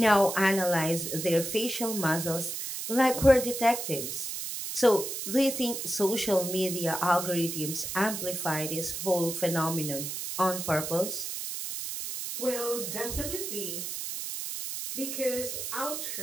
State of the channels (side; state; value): right; noise; hiss, 5 dB below the sound